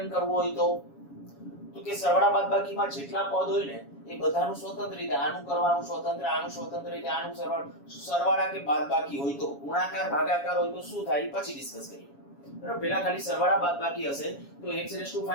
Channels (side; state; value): right; late; 7.2 ms